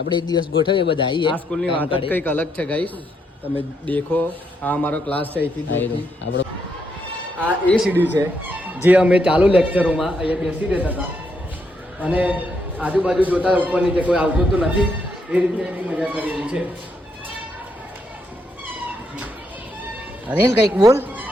એક દિવસ ગોઠવીએ બધા આવીએ. આ સ્કૂલની વાત જ કંઈક અલગ છે ગાઈસ. તમે દેખો આ અમારો ક્લાસ છે અહીંથી. આપણો આ એ સીડી છે જે અમે ચાલુ લેક્ચરોમાં અહીંયા બેસી રહેતા હતા, અને આજુબાજુ જોતા ઉપર નીચે કોઈ આવતું તો નથી, એ રીતે એની મજા કરેલી છે. અનિલ કંઈક બોલ.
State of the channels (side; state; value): both; normal; correlation 0.77